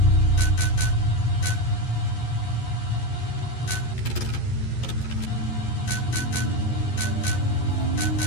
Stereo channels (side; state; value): right; late; 11 ms